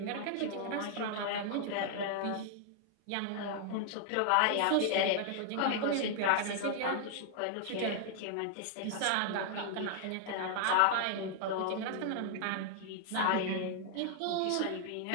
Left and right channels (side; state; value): both; different; correlation 0.00